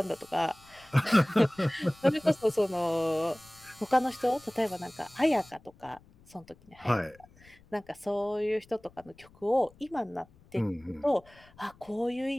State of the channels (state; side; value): noise; left; rumble, 27 dB below the sound